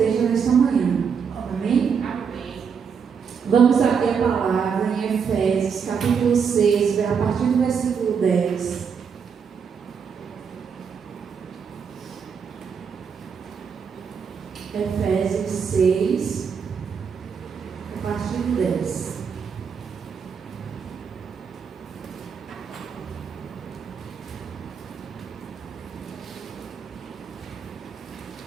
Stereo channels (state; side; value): quieter; left; 6.5 dB